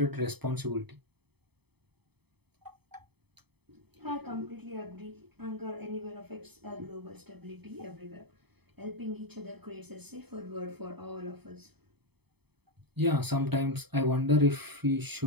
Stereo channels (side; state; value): left; late; 0.98 ms